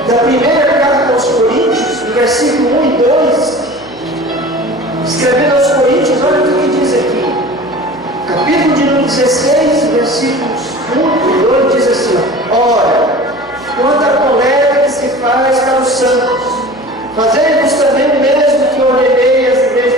da primeira carta aos Coríntios, no versículo 1 e 2, escrevendo aos Coríntios, olha o que diz aqui. Capítulo de número 16, versículos 1 e 2, diz assim: ora, quanto à coleta que se faz para os santos, fazei-vos também o mesmo que ordenei às igrejas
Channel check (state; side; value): noise; right; hum, 26 dB below the sound